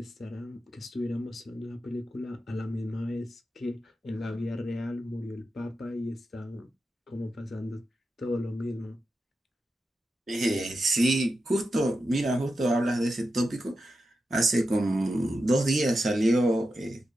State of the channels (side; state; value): both; normal; correlation 0.89